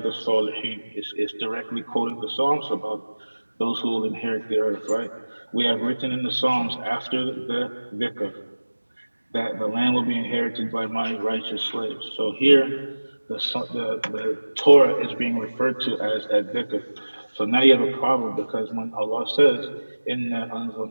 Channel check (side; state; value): both; inverted; correlation -1.00